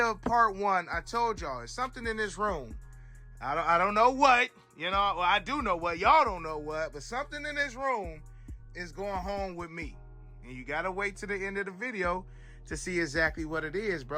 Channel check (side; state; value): both; identical; correlation 1.00